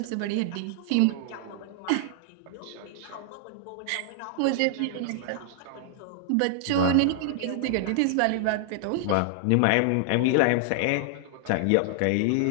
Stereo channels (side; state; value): both; different; correlation -0.01